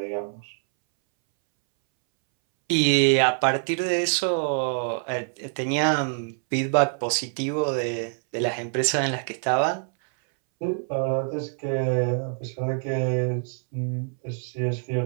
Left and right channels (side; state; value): left; silent; 61 dB below the other